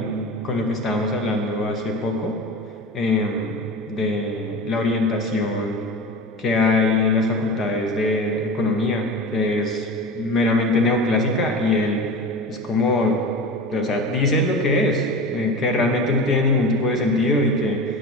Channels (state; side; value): normal; both; correlation 0.31